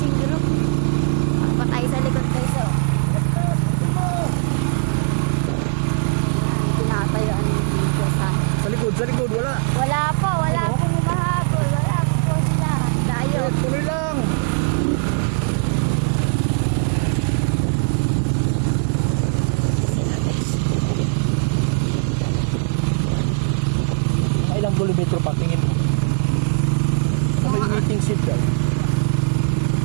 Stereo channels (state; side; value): silent; left; 66 dB below the other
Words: group. Patay sa likod guys, oh. Ayan, tinatayuan dito sa... Sa likod, wala. Wala po humahabol. Wala po sila. Tayo. Eh, tuloy lang. Ilang kilometro pa tingin mo? Sa may meeting seat daw.